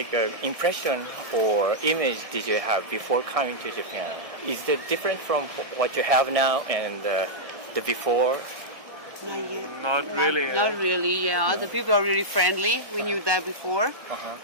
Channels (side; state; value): left; late; 1.2 ms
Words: impression or image did you have before coming to Japan? Is it different from what you have now and the before? Not yet. Not really. Not really, yeah. The people are really friendly. We knew that before.